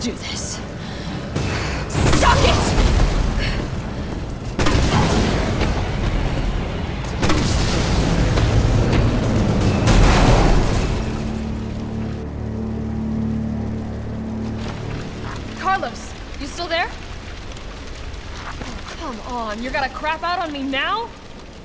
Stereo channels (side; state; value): both; identical; correlation 1.00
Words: this. Suck it! Carlos, you still there? Oh, come on, you're gonna crap out on me now?